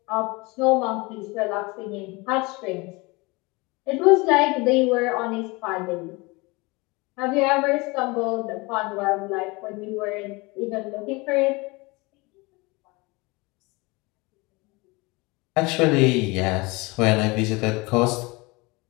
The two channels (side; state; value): right; quieter; 25.2 dB